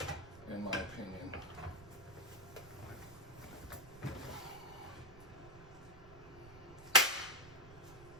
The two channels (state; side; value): noise; right; rumble, 18 dB below the sound